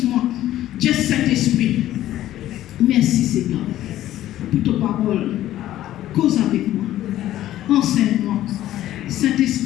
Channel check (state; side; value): quieter; right; 13.5 dB